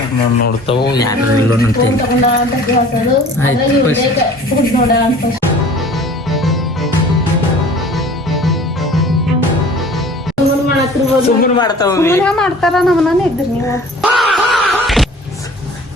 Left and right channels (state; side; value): normal; both; correlation 0.47